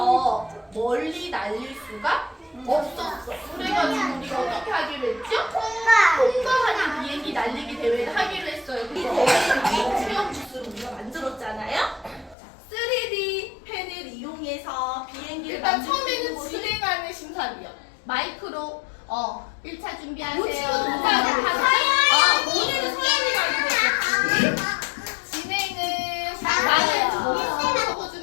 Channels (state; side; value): drops out; right; at 12.4 s